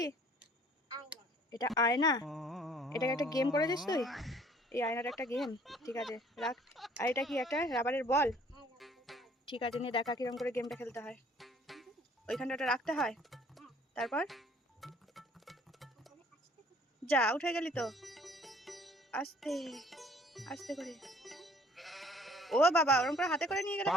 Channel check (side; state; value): both; normal; correlation 0.56